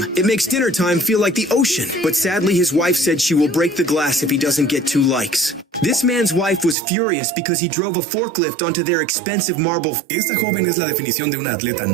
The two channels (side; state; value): left; drops out; at 6.8 s